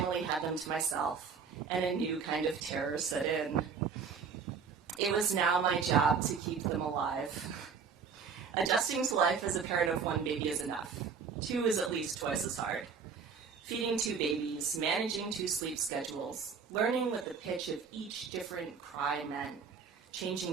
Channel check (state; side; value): quieter; left; 5.9 dB